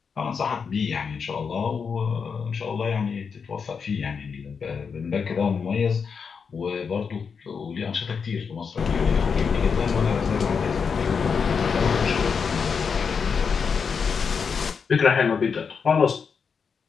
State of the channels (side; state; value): right; quieter; 5.9 dB